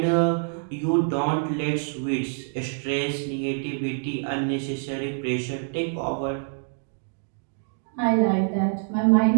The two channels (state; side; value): silent; left; 61 dB below the other